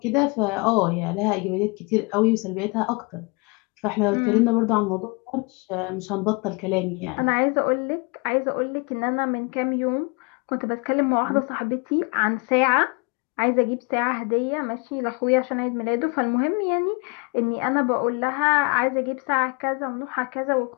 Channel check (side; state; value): right; quieter; 30.1 dB